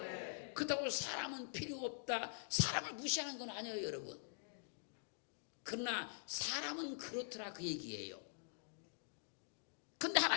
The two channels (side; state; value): right; silent; digital silence